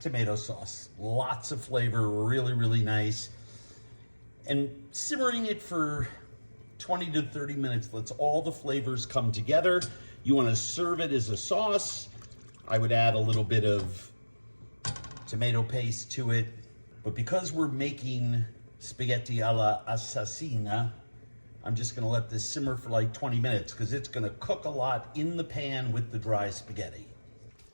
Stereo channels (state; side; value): inverted; both; correlation -1.00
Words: sauce. Lots of flavor, really, really nice. And simmering it for 20 to 30 minutes lets all the flavors come together. You want to serve it as a sauce. I would add a little bit of tomato paste to it. But because we're making spaghetti alla assassina, I'm just gonna let this simmer for like 20 minutes because it's gonna cook a lot in the pan with the dry spaghetti.